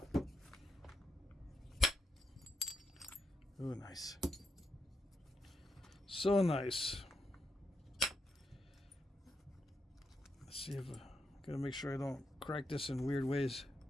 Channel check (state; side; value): normal; both; correlation 0.82